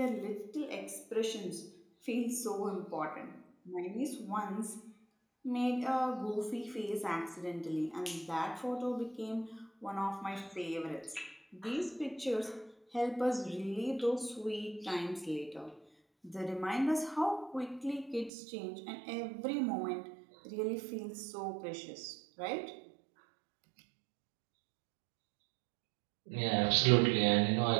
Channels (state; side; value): drops out; left; at 18.3 s